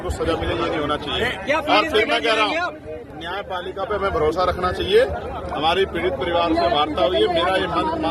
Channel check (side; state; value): both; identical; correlation 1.00